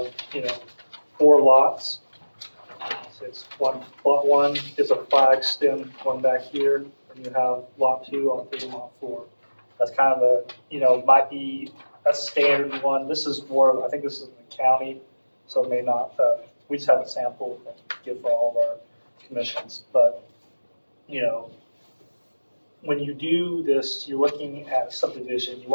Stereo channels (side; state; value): both; inverted; correlation -1.00